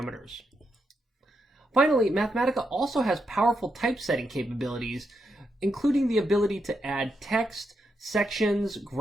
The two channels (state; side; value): normal; both; correlation 0.83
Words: Finally, Mathematica also has powerful typesetting capabilities, including the ability to add text, sections,